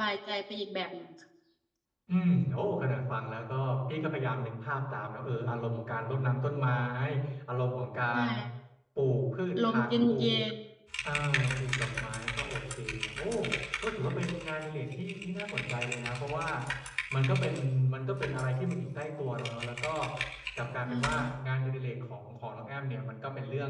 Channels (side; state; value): both; identical; correlation 1.00